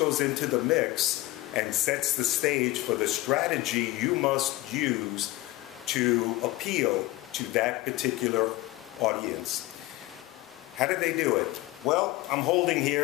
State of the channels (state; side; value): quieter; right; 18.5 dB